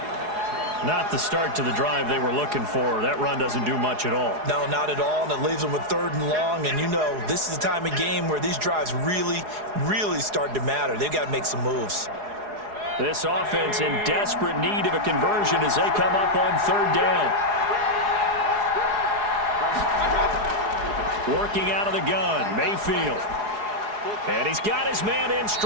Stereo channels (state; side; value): late; left; 4.8 ms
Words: Not the start to the drive they were looking for. That run doesn't do much at all. No, not at all, and it leaves them with 3rd and long. And you know, this is the time of game where these drives really start to matter. They've got to make some moves. This offense in desperate need of a conversion as they come up on 3rd down. Working out of the gun, Mayfield. And he's got his man in